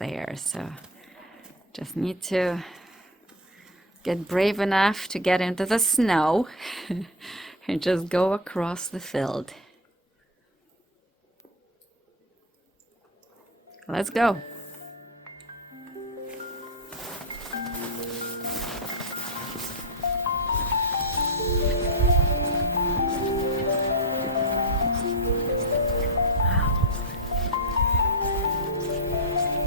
so just need to get brave enough to get into the snow and just go across the field. Let's go.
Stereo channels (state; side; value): normal; both; correlation 0.13